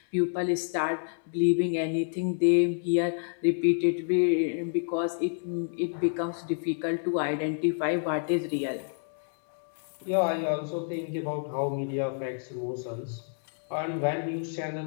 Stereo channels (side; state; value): right; silent; digital silence